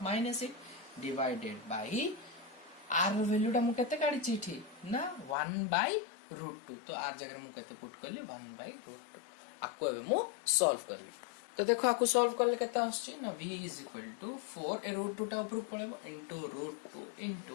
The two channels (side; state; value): right; drops out; at 5.4 s